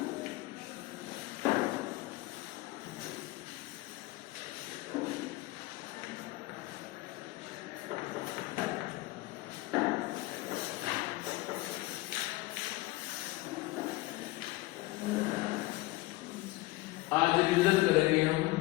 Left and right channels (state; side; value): quieter; right; 19.7 dB